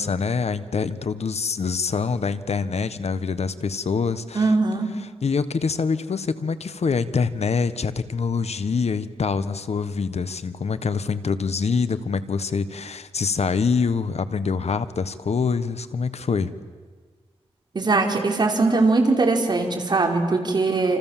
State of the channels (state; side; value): normal; both; correlation 0.70